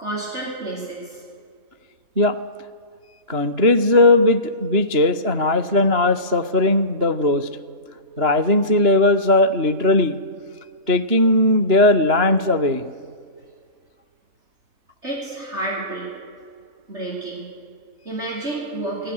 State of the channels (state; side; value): late; left; 3.0 ms